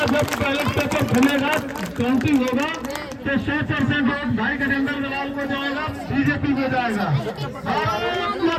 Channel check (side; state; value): both; identical; correlation 1.00